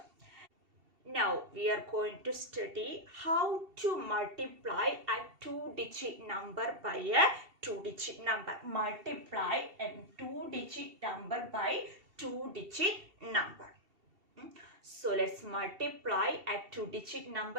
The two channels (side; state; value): left; late; 2.7 ms